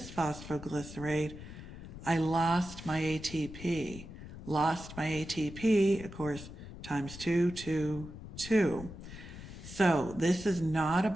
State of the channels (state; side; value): noise; left; rumble, 13 dB below the sound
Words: I lost my ATP. Lost my ATP, of course, times 2, 2, 2. So this is not a